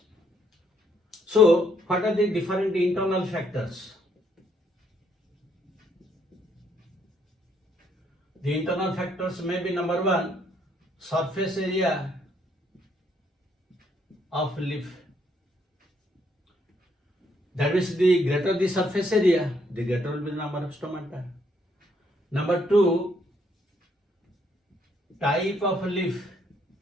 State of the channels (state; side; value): normal; both; correlation 0.71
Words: So what are the different internal factors? The internal factors may be number one, surface area of leaf. That means the greater the surface area, the greater will be the number of stomata. Number two, type of leaf.